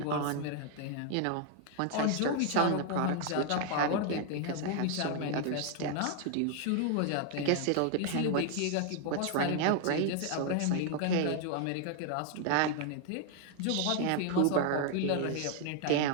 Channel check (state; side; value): different; both; correlation 0.00